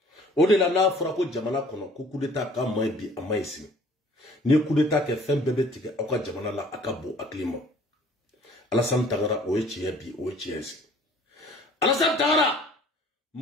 Au-delà de Frako Jamana Kono, coup d'état, quand moi, bi, à Maïsi. Ni coup d'état qui fait un bébé tigre, à quoi Jamana la Akabo, à Klima. Alassane Tangara, Oechi, bi, Oechi. Alassane Tangara!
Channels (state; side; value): normal; both; correlation 0.53